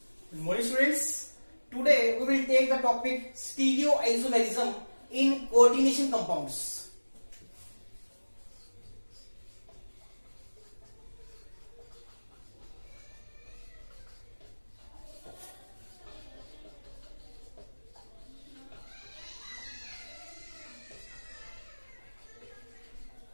Good morning, students. Today we will take the topic stereoisomerism in coordination compounds.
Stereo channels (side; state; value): both; inverted; correlation -1.00